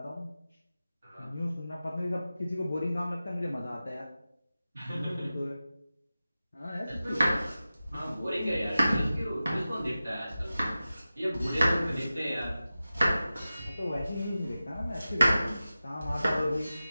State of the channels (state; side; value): inverted; both; correlation -0.94